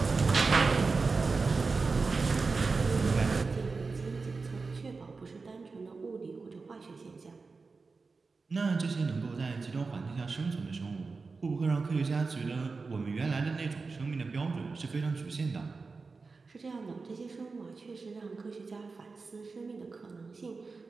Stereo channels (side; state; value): left; quieter; 4.2 dB